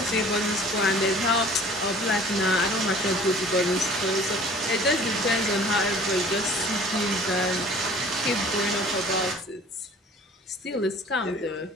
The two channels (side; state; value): both; normal; correlation 0.48